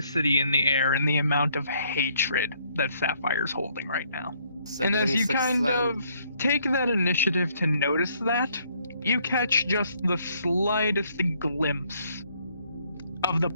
in the air and the amount of hatred that Sapphire's holding right now. And as you kind of take that initiative to notice that, you catch just the slightest glimpse of the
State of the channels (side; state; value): both; inverted; correlation -0.67